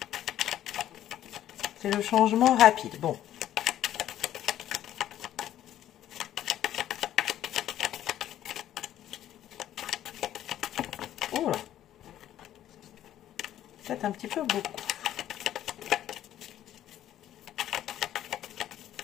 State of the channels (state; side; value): quieter; right; 12.0 dB